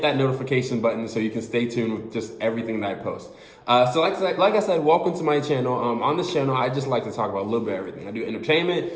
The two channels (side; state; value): both; identical; correlation 1.00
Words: that notification button so you can stay tuned with just everything that I post. So like I said, welcome to my channel. On this channel, I just like to talk about a little bit of everything. I do